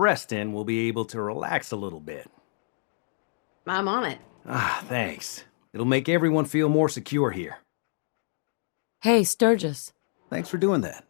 will be able to relax a little bit. I'm on it. Ah, thanks. It'll make everyone feel more secure here. Hey, Sturgis. Thanks for doing that.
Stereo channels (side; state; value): right; silent; digital silence